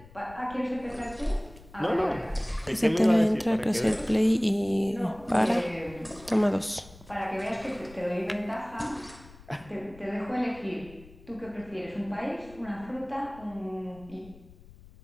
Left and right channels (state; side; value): noise; left; rumble, 21 dB below the sound